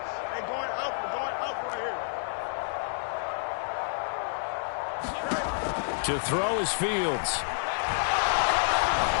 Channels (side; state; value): right; silent; digital silence